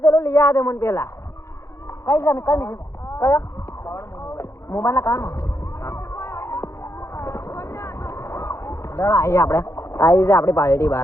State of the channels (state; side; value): late; right; 0.14 ms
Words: લઈ આ દે મને પેલા કઈ જાને કઈ કયો મોબાઈલ ના કાન દડા આવી આપણે આવી છે આપણી પાર્ટી